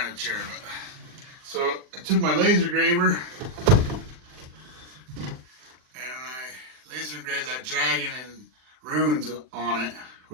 of chair. But so I took my laser engraver and I laser engraved that dragon and runes on it,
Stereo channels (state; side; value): late; left; 40 ms